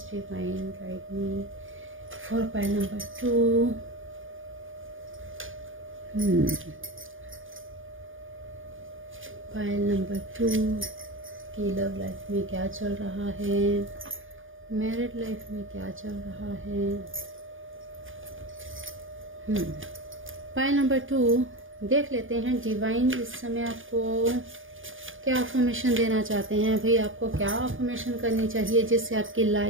divine guide me for pile number 2। Pile number 2 की लव लाइफ में क्या चल रहा है, मैरिड लाइफ में क्या चल रहा है। पाइल नंबर 2 देख लेते हैं डिवाइन इस समय आपको क्या अफर्मेशन देना चाहते हैं। भाई आपको क्या अफर्मेशन करनी चाहिए जिससे आपकी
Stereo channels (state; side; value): late; left; 0.58 ms